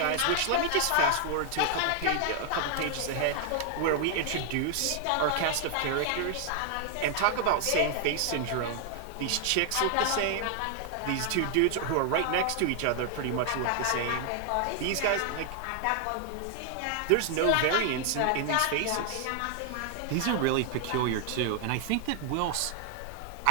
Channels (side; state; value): both; different; correlation 0.00